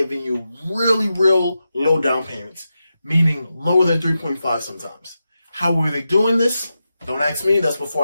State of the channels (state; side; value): inverted; both; correlation -0.90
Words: you real low down payments, meaning lower than 3.5 sometimes. How were they doing this? Don't ask me. That's